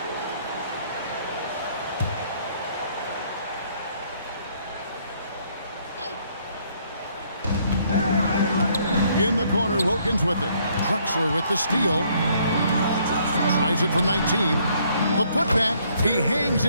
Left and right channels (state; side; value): inverted; both; correlation -0.67